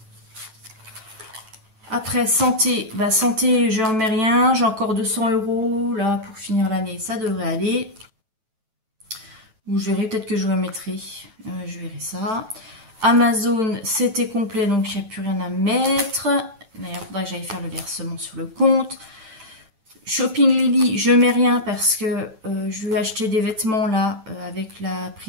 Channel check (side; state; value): left; late; 9.1 ms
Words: Après, santé. Bah, santé, je n'en mets rien. J'ai encore 200 € là pour finir l'année. Ça devrait aller. Ou je verrai, peut-être que je remettrai. Je verrai ça. Amazon, c'était complet, donc il n'y a plus rien à mettre. D'ailleurs, il faudra que j'aille faire le versement sur le compte. Shopping Lily, je mets rien parce que je vais acheter des vêtements là avec la